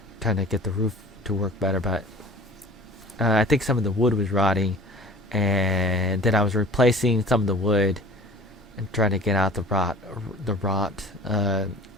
trying to get the roof to work better. But I think some of the wood was rotting, and then I was replacing some of the wood and trying to get out the rot.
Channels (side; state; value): both; normal; correlation 0.42